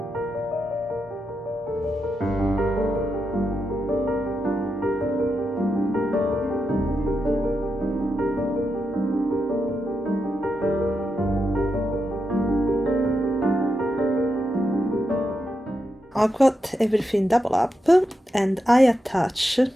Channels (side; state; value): both; normal; correlation 0.86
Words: I've got everything double up, and I attach